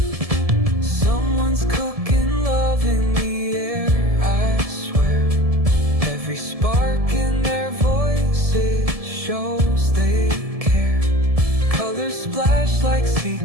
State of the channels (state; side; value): late; left; 1.7 ms